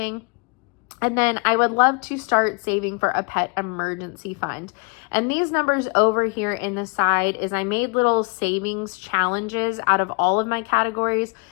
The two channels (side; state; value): right; quieter; 34.0 dB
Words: And then I would love to start saving for a pet emergency fund. And these numbers over here in the side is I made little savings challenges out of all of my categories.